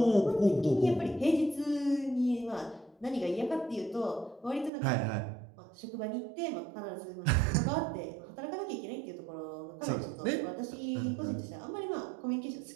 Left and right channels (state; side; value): drops out; left; at 4.7 s